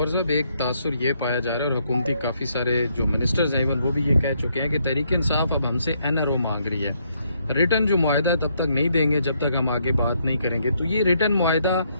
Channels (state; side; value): inverted; both; correlation -0.73